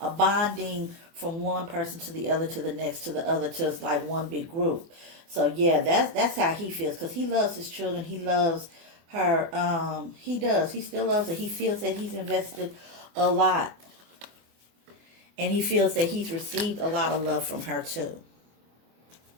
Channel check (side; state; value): left; late; 24 ms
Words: bonding from one person to the other, to the next, to the other, to it's like one big group. So yeah, that's how he feels, because he loves his children. He loves her. He does. He still loves her. He feels that he's invested a lot, and he feels that he's received a lot of love from her too.